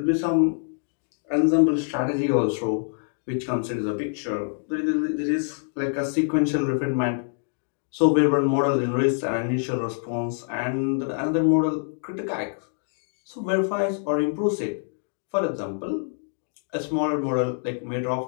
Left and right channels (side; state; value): right; silent; digital silence